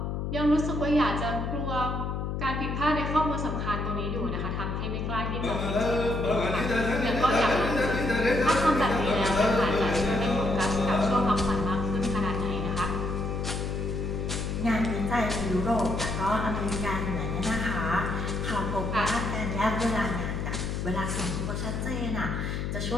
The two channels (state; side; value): noise; left; hum, 2 dB below the sound